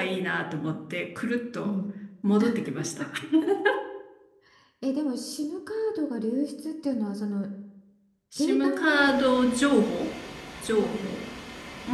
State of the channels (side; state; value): both; identical; correlation 1.00